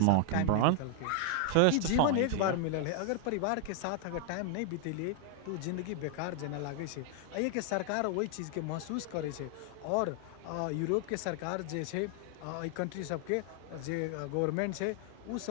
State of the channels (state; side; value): different; both; correlation 0.00